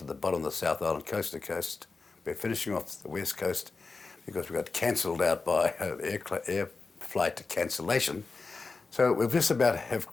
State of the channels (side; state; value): right; quieter; 4.2 dB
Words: the bottom of the South Island, coast to coast. We're finishing off the West Coast because we got cancelled out by air flight cancellation. So we've just about have